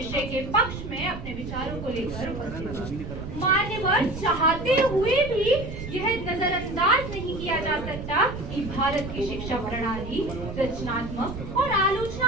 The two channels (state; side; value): noise; right; rumble, 9 dB below the sound